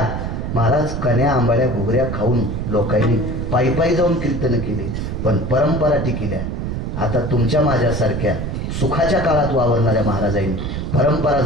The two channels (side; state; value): right; noise; rumble, 3 dB below the sound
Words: महाराज कन्या आंबाड्या घुगऱ्या खाऊन लोकांनी पायी जाऊन कीर्तन केले, पण परंपरा टिकल्या. आता तुमच्या माझ्यासारख्या सुखाच्या काळात वावरणाऱ्या महाराजांनी परंपरा